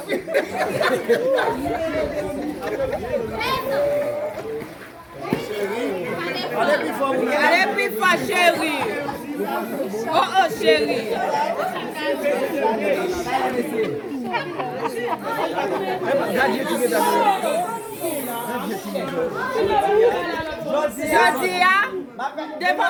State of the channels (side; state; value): both; identical; correlation 1.00